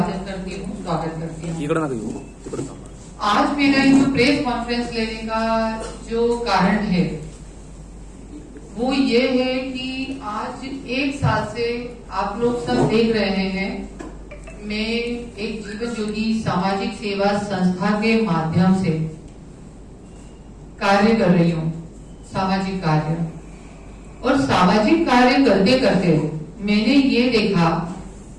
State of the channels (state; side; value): identical; both; correlation 1.00